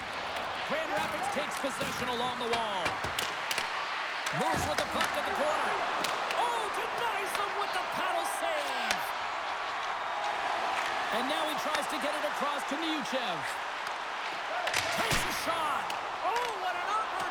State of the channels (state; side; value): identical; both; correlation 1.00